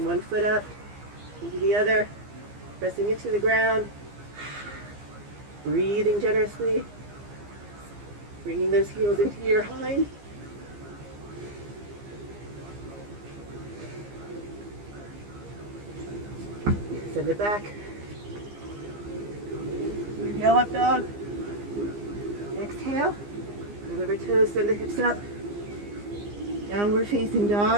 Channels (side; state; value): left; late; 15 ms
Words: one foot up, maybe the other. Pressing it to the ground. Breathing generously. Bringing those heels into your hind. Send it back. Inhale, up dog. Exhale. Move over toes, send the hips up. Downward facing